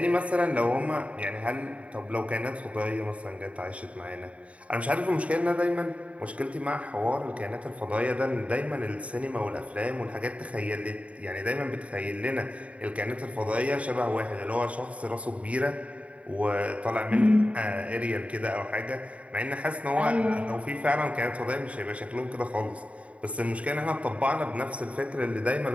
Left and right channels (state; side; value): late; left; 0.065 ms